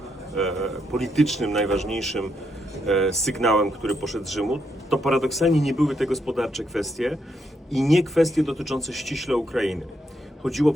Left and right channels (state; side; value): normal; both; correlation 0.78